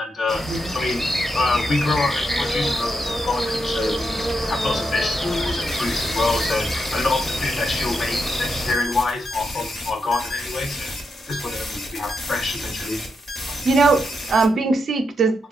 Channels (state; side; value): normal; both; correlation 0.83